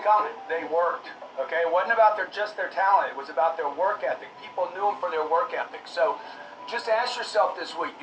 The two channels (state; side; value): identical; both; correlation 1.00